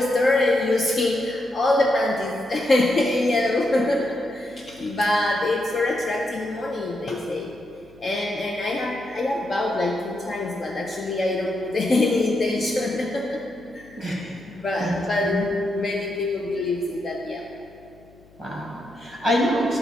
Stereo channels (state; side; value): noise; left; hum, 27 dB below the sound